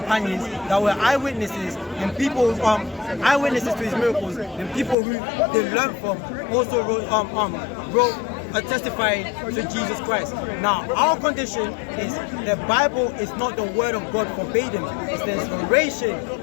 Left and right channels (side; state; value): right; drops out; at 5.0 s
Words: that were eyewitnesses and people eyewitnesses to his miracles and people who they learned from also wrote testifying to Jesus Christ. Now, our condition is the Bible is not the word of God verbatim. It's the inspiration